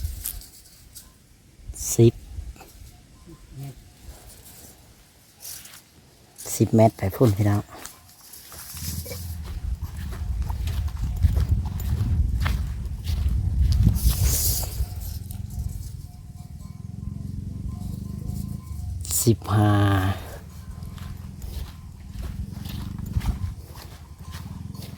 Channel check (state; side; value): identical; both; correlation 1.00